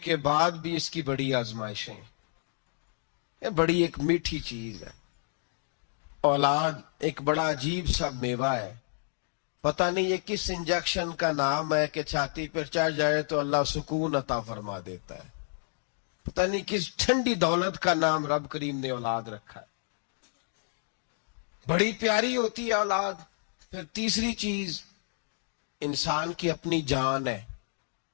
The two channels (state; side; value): silent; right; digital silence